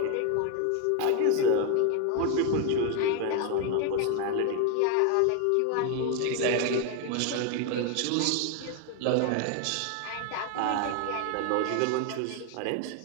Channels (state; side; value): different; both; correlation 0.01